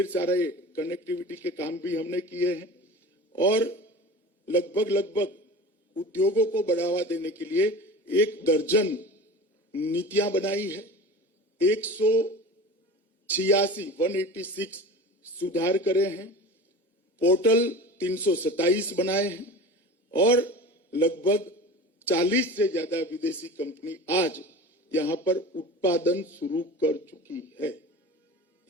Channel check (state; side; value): normal; both; correlation 0.34